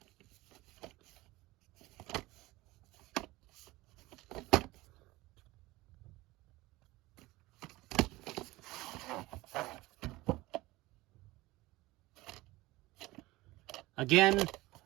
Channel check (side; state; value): left; quieter; 19.7 dB